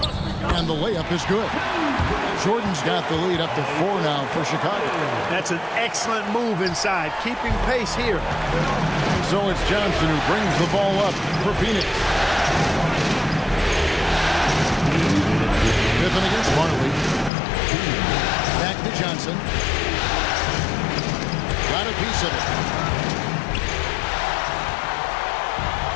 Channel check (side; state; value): right; drops out; at 17.3 s